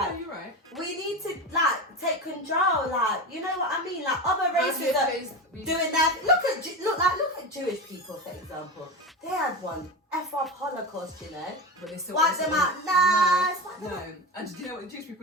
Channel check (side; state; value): both; normal; correlation 0.22